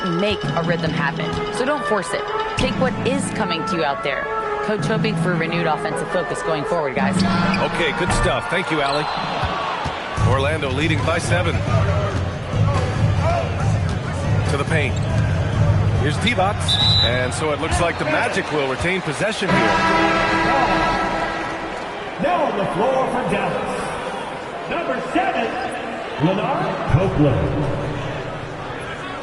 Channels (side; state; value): both; identical; correlation 1.00